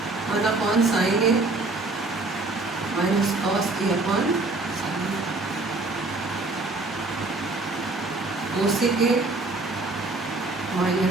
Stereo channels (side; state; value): left; quieter; 3.2 dB